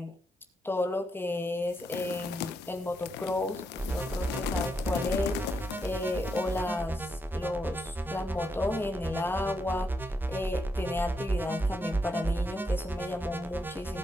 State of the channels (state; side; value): normal; both; correlation 0.81